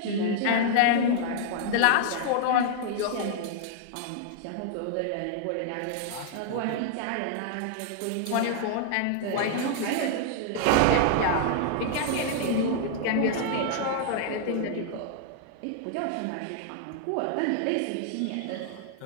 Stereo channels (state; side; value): different; both; correlation -0.01